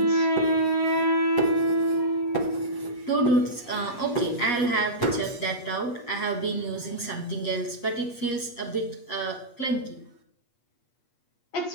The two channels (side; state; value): right; late; 8.4 ms